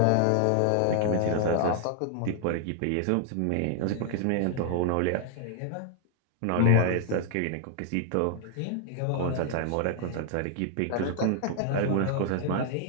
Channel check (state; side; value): different; both; correlation 0.00